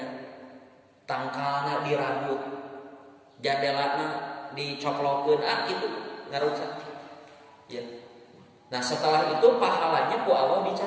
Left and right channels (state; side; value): identical; both; correlation 1.00